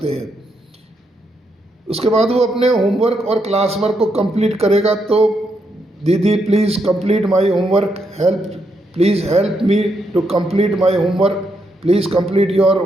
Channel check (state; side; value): normal; both; correlation 0.79